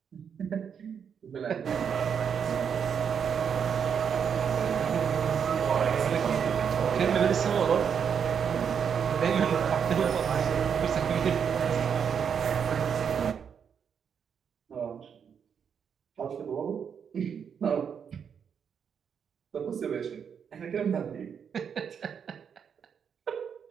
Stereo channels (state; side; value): quieter; left; 7.3 dB